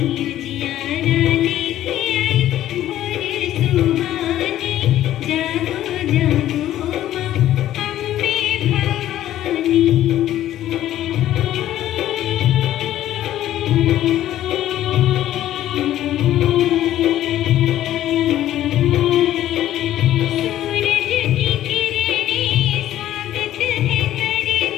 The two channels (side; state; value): right; quieter; 12.8 dB